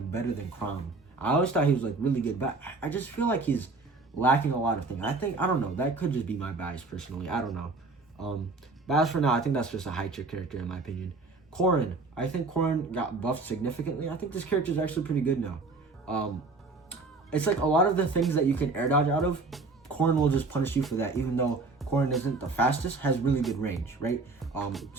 better than Chrom. I always thought he was like really good, but I just feel like he's lacking a lot of things. I don't know. That could just be my bias personally. I don't know. But as for now, I think that's just a high tier character in my opinion. Corrin. I think Corrin got buffed significantly. I think this character is actually pretty good now. It's like a lot of the things that you can air dodge out of, Corrin will just punish you for that, even though Corrin isn't the fastest, has really good range, right?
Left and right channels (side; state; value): left; quieter; 3.7 dB